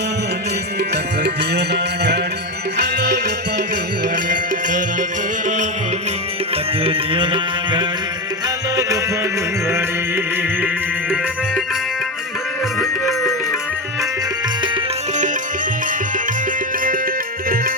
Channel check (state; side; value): normal; both; correlation 0.15